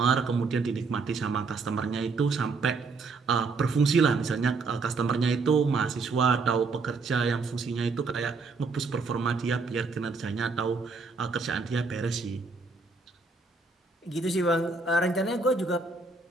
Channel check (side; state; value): left; quieter; 4.1 dB